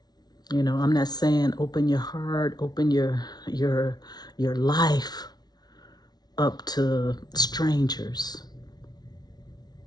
You know, I'm not saying open your heart, open your life up to strangers.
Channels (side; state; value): right; late; 0.19 ms